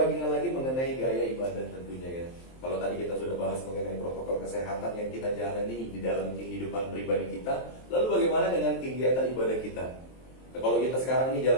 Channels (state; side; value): late; right; 23 ms